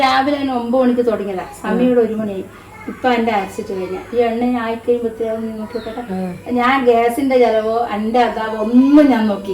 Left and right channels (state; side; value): identical; both; correlation 1.00